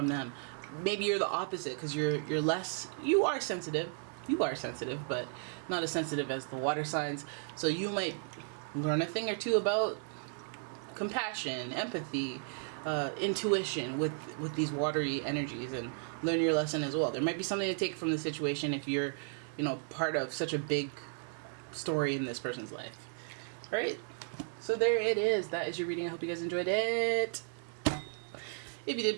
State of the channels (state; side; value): silent; left; 55 dB below the other